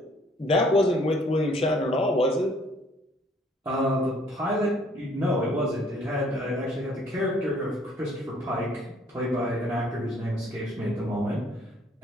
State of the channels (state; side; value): normal; both; correlation 0.60